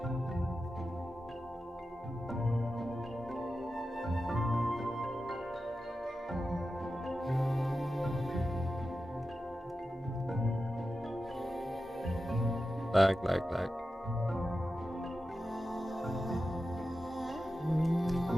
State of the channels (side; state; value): both; normal; correlation 0.92